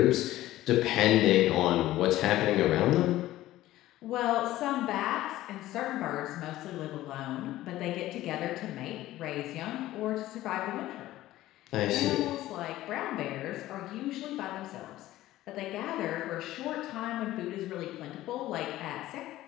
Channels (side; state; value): right; quieter; 15.4 dB